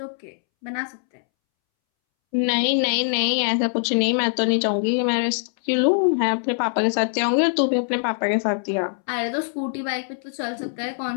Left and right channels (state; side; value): silent; right; 64 dB below the other